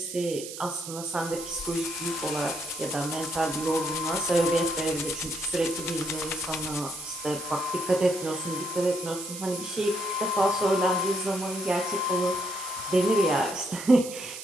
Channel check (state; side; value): noise; right; hiss, 10 dB below the sound